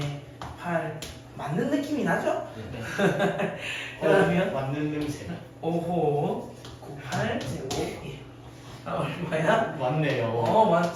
8 맞는 느낌이 나죠? 그러면 맞는 냄새. 5호 98 제곱 1. 얼마야? 맞네요.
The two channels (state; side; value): identical; both; correlation 1.00